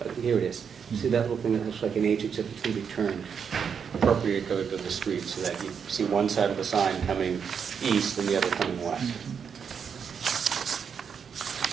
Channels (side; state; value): left; quieter; 6.9 dB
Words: Here it is. See that little thing that looks like an H, except it's going to be turned appropriately to go to the street, so that you see one side of the sign coming east and the other coming west.